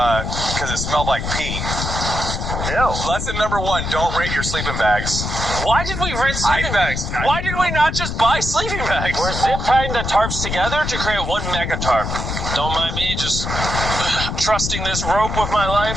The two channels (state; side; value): noise; left; rumble, 4 dB below the sound